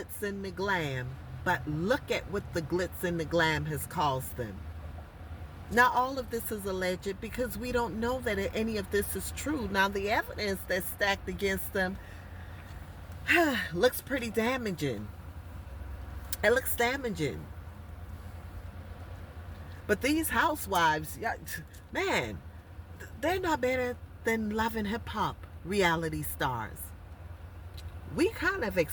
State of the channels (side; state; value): both; identical; correlation 1.00